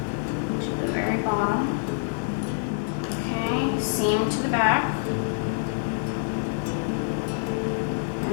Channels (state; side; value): silent; right; digital silence